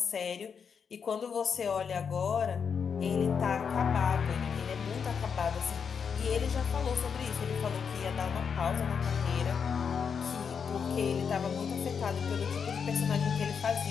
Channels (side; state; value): right; quieter; 6.5 dB